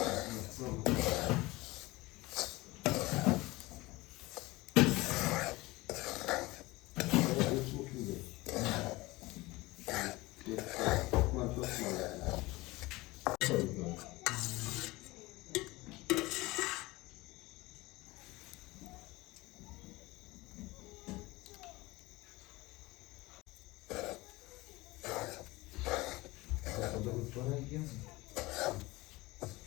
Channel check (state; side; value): quieter; right; 21.0 dB